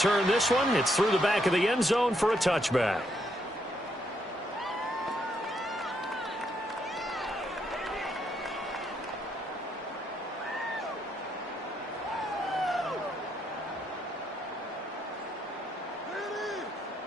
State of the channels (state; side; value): normal; both; correlation 0.75